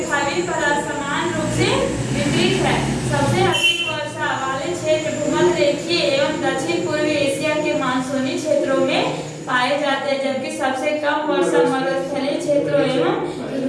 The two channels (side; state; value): both; identical; correlation 1.00